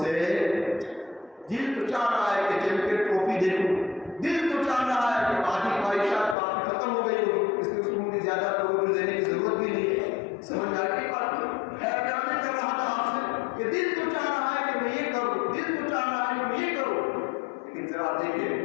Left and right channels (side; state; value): right; drops out; at 6.4 s